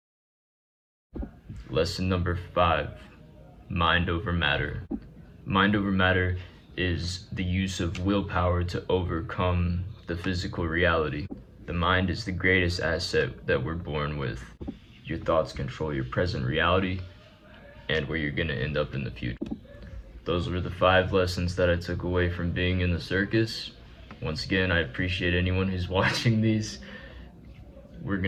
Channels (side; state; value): both; identical; correlation 1.00